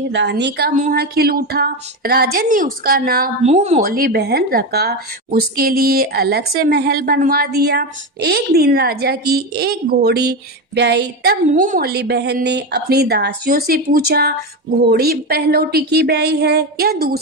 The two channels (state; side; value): normal; both; correlation 0.16